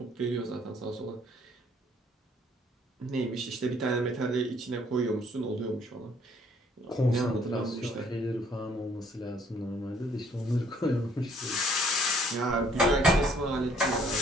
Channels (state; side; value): normal; both; correlation 0.62